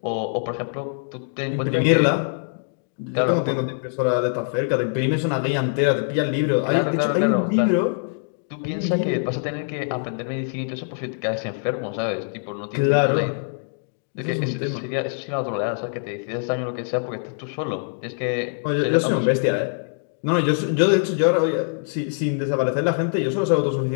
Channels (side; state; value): right; silent; digital silence